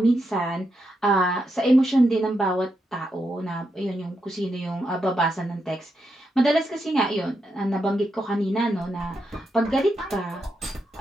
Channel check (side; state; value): both; normal; correlation 0.83